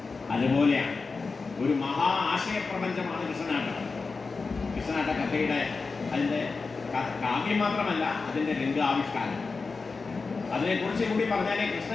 അതുപോലെയാണ് ഒരു മഹാ ആശയപ്രപഞ്ചമാണ് കൃഷ്ണനാട്ടം. കൃഷ്ണനാട്ട കഥയുടെ അതിൻ്റെ കാവ്യം മാത്രമല്ല, അതിൻ്റെ രംഗാവിഷ്കാരം. അതിനെക്കുറിച്ച് കൂടി പറഞ്ഞാലേ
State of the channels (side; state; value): right; quieter; 4.3 dB